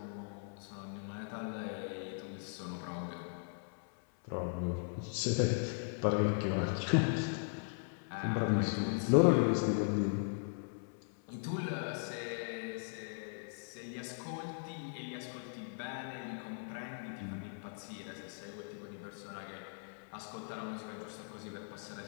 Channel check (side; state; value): right; silent; 52 dB below the other